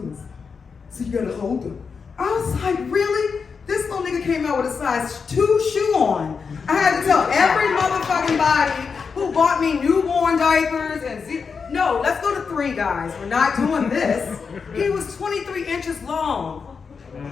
So you gotta hold him. I was like, really? This little nigga came out with a size 2 shoe on. I had to tell every motherfucking body who bought me newborn diapers and no, let's go to 3, guys. We're not doing this. He was 23 inches long.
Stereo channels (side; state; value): right; quieter; 5.5 dB